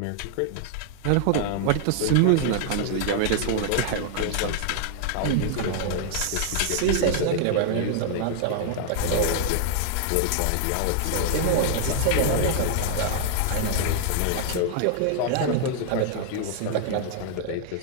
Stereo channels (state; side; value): different; both; correlation 0.00